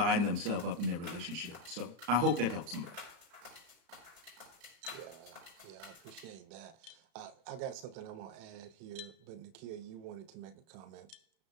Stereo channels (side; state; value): left; late; 34 ms